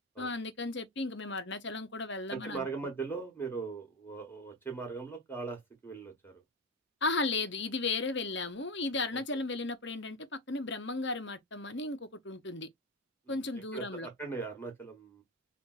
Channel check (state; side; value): normal; both; correlation 0.17